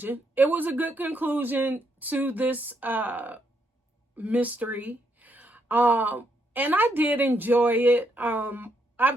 It was a good conclusion to this mystery. And I did enjoy it.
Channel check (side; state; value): both; normal; correlation 0.76